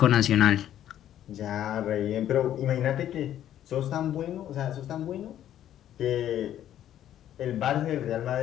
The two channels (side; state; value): right; quieter; 11.4 dB